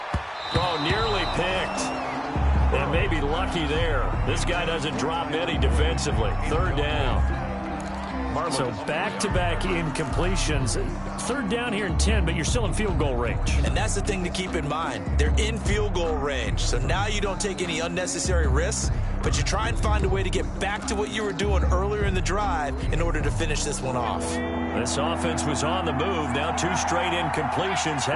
Oh, nearly picked. And maybe lucky there. This guy doesn't drop any defensively. 3rd down. So back-to-back incompletions. 3rd down here in 10, but you're still in field goal range. And that's the thing to keep in mind. They're in field goal range. So now you don't take any unnecessary risks, but you try and find a way to get back to what you were doing earlier in the drive in order to finish this one off. This offense was on the move. Now 2 straight incompletions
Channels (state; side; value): identical; both; correlation 1.00